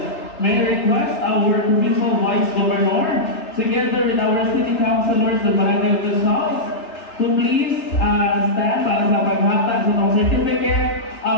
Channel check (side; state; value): right; late; 3.4 ms